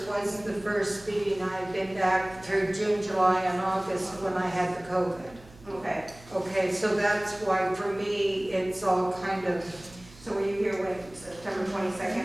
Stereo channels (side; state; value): right; noise; hum, 22 dB below the sound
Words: was the first meeting. I've been back through June, July, and August when I had the COVID. Okay, Okay, so that's why for me, it's all kind of, so were you here when, September